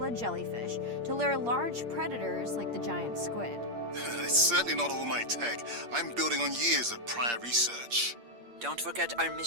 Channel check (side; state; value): left; late; 8.5 ms